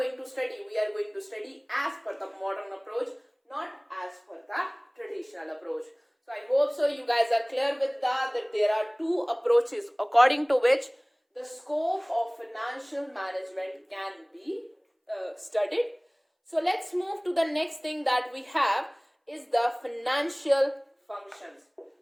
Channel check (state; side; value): identical; both; correlation 1.00